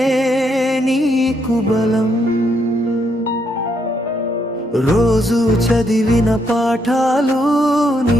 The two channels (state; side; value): normal; both; correlation 0.75